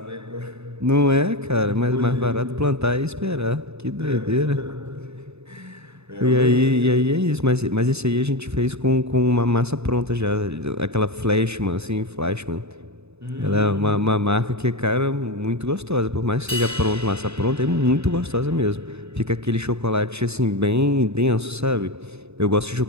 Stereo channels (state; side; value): late; left; 0.80 ms